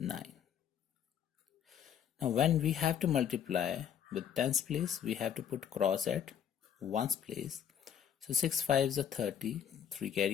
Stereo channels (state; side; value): quieter; right; 8.8 dB